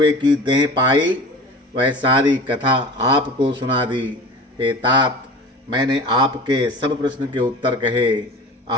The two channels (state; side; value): normal; both; correlation 0.37